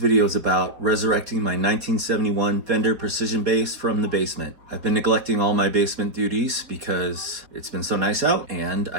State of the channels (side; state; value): left; late; 4.3 ms